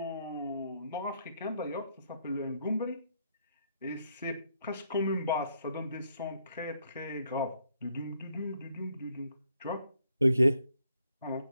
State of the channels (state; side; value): inverted; both; correlation -0.73